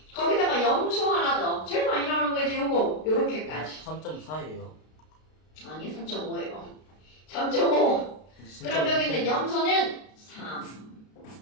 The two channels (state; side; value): late; right; 32 ms